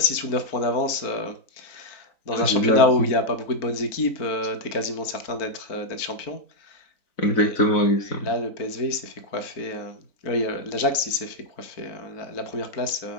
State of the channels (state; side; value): late; right; 4.4 ms